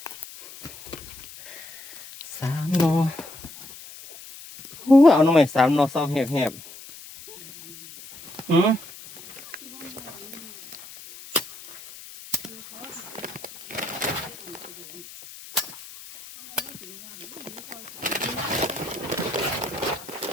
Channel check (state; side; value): noise; left; hiss, 16 dB below the sound